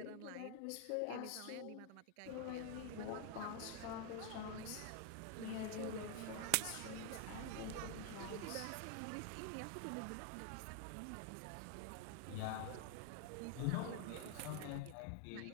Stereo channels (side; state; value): both; different; correlation 0.00